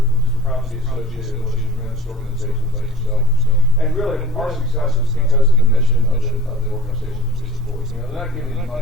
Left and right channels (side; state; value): both; normal; correlation 0.43